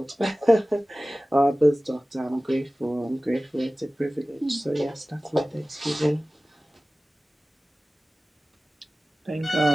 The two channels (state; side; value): normal; both; correlation 0.97